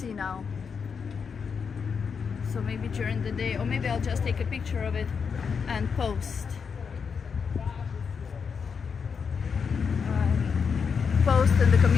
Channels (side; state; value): right; quieter; 6.1 dB